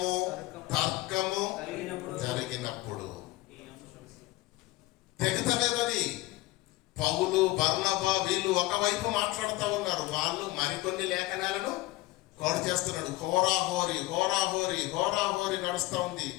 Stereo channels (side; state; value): right; quieter; 19.2 dB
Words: తర్కము జరిగినప్పుడు. తెగతలేదని పౌలు, బర్నబా వీళ్ళు ఒకవైపు మాట్లాడుతూ ఉన్నారు, వాళ్ళు మరికొన్ని లేఖనాలను కోడ్ చేస్తున్నాడు. హోరాహోరీ నడుస్తూ ఉంది.